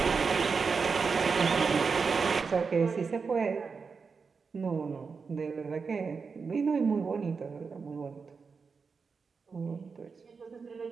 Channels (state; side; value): quieter; left; 5.1 dB